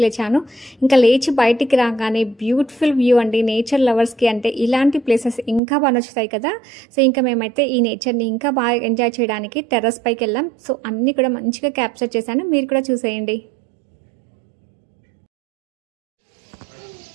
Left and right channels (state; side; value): drops out; left; at 5.6 s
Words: లేచాను. ఇంకా లేచి బయటికి రాగానే బ్యూటిఫుల్ వ్యూ అండి. నేచర్ లవర్స్కి అంటే ఇలాంటి ప్లేసెస్ ఇంకా బాగా నచ్చుతాయి కదా. సో ఇంకా మేమైతే ఈ నేచర్ని ఇంకా బాగా ఎంజాయ్ చేయడానికి టెర్రస్ పైకి వెళ్ళాం. సో అన్నీ కూడా మంచిగా క్యాప్చర్ చేశాను, మీరు కూడా చూసేయండి.